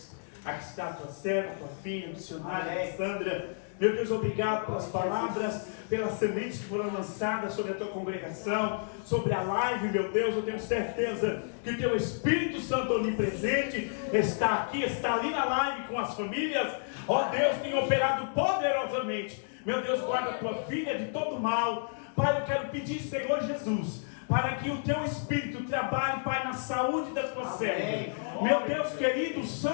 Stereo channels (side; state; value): right; silent; digital silence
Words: Aqui está a tua serva, tua filha, missionária Alessandra. Meu Deus, obrigado pelas palavras, pelas sementes que foram lançadas sobre a tua congregação, sobre a live, meu Deus. Eu tenho certeza que o teu Espírito Santo onipresente está aqui, está ali na live com as famílias. Ó Deus, tem operado poderosamente. Meu Deus, guarda a tua filha de todo mal. Pai, eu quero pedir, Senhor Jesus, para que o teu Espírito trabalhe, Pai, na saúde da tua serva. Meu Deus querido, o